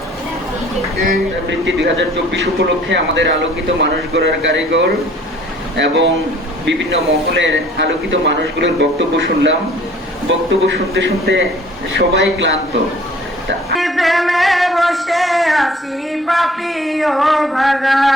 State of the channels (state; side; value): normal; both; correlation 0.53